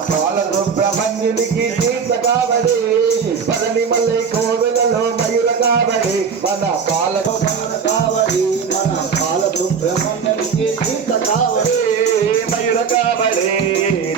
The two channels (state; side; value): quieter; left; 6.2 dB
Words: బాల సుబ్రహ్మణ్యునికి తీర్థ కావడి పళనిమలై కోవెలలో మయూర కావడి మన బాల కావడి మన బాల సుబ్రహ్మణ్యునికి తీర్థ కావడి మయూర కావడి